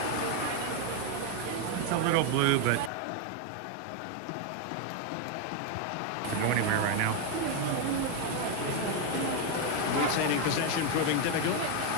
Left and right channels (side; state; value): both; different; correlation 0.01